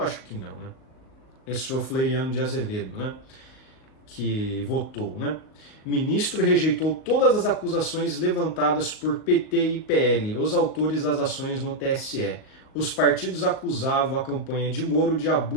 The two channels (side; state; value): right; late; 38 ms